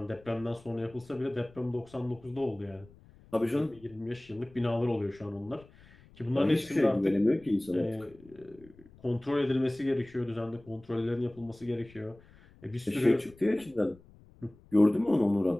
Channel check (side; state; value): left; noise; rumble, 25 dB below the sound